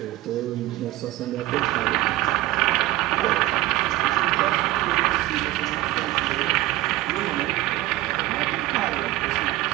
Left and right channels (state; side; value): quieter; left; 16.4 dB